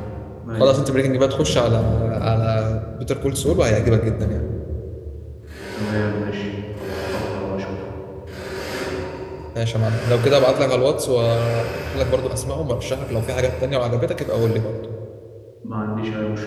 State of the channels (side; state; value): both; identical; correlation 1.00